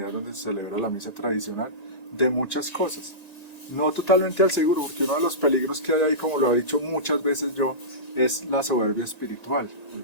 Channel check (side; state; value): right; late; 1.9 ms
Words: donde se celebra la misa tradicional, de muchas cosas. No totalmente al seguro, porque uno de los peligros que hay ahí, como lo he dicho muchas veces yo, es la soberbia espiritual, el